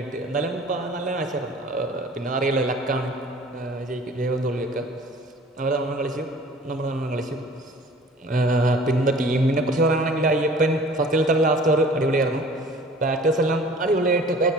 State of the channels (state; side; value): normal; both; correlation 0.48